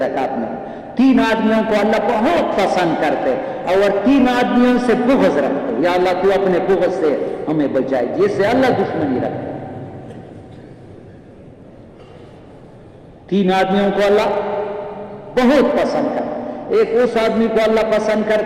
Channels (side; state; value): both; identical; correlation 1.00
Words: میں. 3 آدمیوں کو اللہ بہت پسند کرتے اور 3 آدمیوں سے بغض رکھتے. یا اللہ تو اپنے بغض سے ہمیں بچائے، جس سے اللہ دشمنی رکھتے. 3 آدمیوں کو اللہ بہت پسند کرتا. ایک اس آدمی کو اللہ پسند